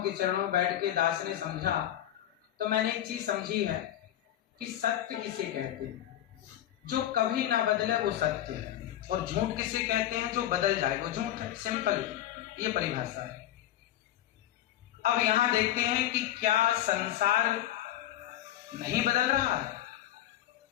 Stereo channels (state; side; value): quieter; right; 12.4 dB